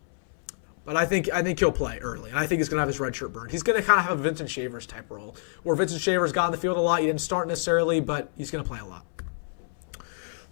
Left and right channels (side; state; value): right; silent; 60 dB below the other